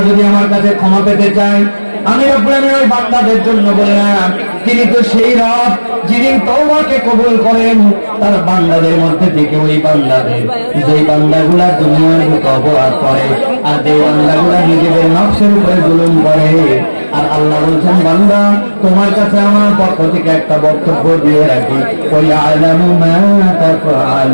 যদি আমার কাছে ক্ষমা পেতে চায়, আমি রব্বুল আলামিন ওই বান্দাদের জন্য বললাম তিনি তো সেই রব যিনি তওবাকে কবুল করেন তার বান্দাদের মধ্যে থেকে। ওই বান্দাদের, যেই বান্দাগুলা দুনিয়ার বুকে অপরাধ করে আর যে বান্দাগুলা নিজেদের নফসের উপরে জুলুম করে। আর আল্লাহ বলছেন বান্দা তোমার কাছে আমার পক্ষ থেকে একটা বক্তব্য দিয়ে রাখি, ওই আলামু মা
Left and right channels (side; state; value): both; inverted; correlation -1.00